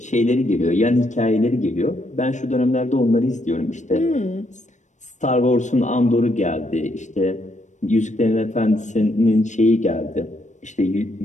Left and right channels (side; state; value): right; late; 0.35 ms